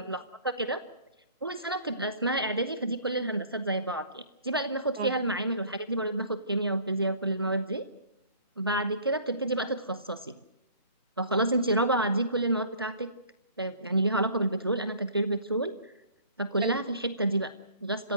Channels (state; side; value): inverted; both; correlation -0.51